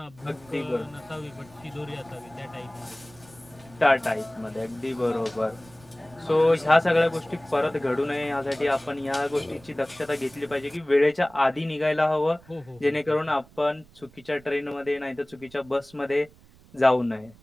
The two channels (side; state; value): right; noise; rumble, 25 dB below the sound